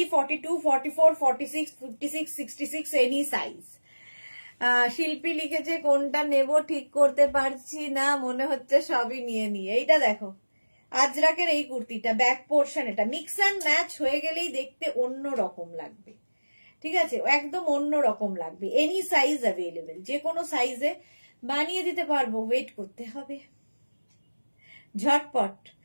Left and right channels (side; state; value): both; inverted; correlation -1.00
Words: 42, 44, 46, 56, 66 এনি সাইজ। শিল্পী লিখেছে কোনটা নেব ঠিক করতে পারছি না, মনে হচ্ছে সবই নিয়ে নিয়ে। এইটা দেখো আজরাকের এই কুর্তিটা, ব্যাক পোর্শন, এটা মিক্স অ্যান্ড ম্যাচ হয়ে গেলেই দেখতে অন্য রকম লাগবে। ঠিক আছে, একদম অন্য রকম লাগবে। এনি সাইজ অ্যাভেলেবেল, যে কোনো সাইজে বানিয়ে দিতে পারবো। ওয়েট করতে হবে, ঝটপট